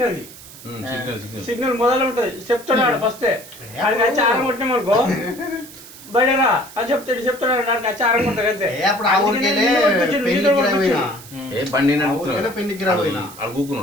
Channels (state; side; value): noise; right; hiss, 18 dB below the sound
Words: సిగ్నల్ మొదలు ఉంటది చెప్తున్నాడు ఫస్ట్ ఆడికి వచ్చి ఆరం కొట్టినామనుకో బయటరా అని చెప్తాడు ఆడికి వచ్చి ఆరం కొడతాడు అంతే అప్పుడు ఆ ఊరికెళ్ళే పెళ్లికి పోయినా ఏ బండి పెళ్లికి పోయినా